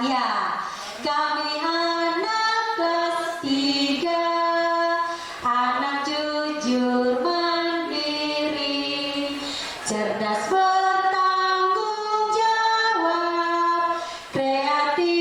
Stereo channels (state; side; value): identical; both; correlation 1.00